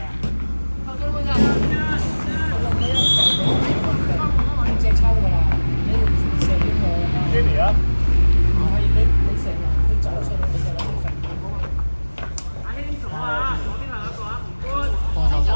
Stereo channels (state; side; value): inverted; both; correlation -1.00